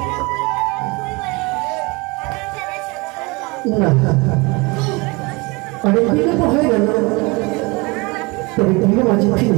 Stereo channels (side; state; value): left; quieter; 26.2 dB